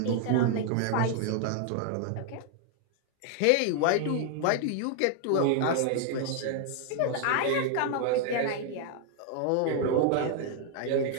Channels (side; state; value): both; different; correlation 0.00